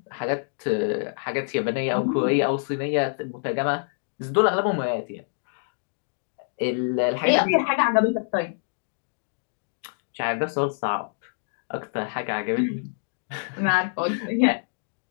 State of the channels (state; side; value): silent; right; digital silence